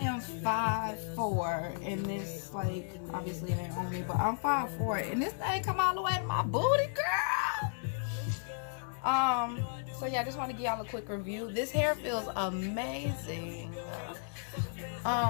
5'4", and this, like, obviously it ain't on me, but I'm 5'4", and this thing come all the way to my booty, girl. So yeah, I just want to give y'all a quick review. This hair feels amazing.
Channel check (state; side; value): silent; right; digital silence